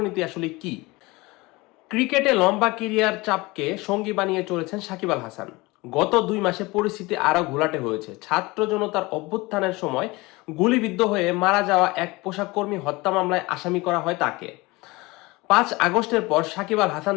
আসলে কি। ক্রিকেটে লম্বা কেরিয়ার চাপকে সঙ্গী বানিয়ে চলেছেন সাকিব আল হাসান। গত 2 মাসে পরিস্থিতি আরও ঘোলাটে হয়েছে। ছাত্র জনতার অভ্যুত্থানের সময় গুলিবিদ্ধ হয়ে মারা যাওয়া এক পোশাক কর্মী হত্যা মামলায় আসামি করা হয় তাকে। 5 আগস্টের পর সাকিব আল হাসান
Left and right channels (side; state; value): right; quieter; 22.8 dB